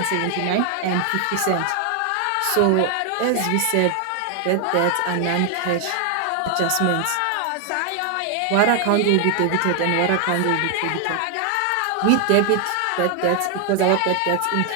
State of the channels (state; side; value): different; both; correlation 0.00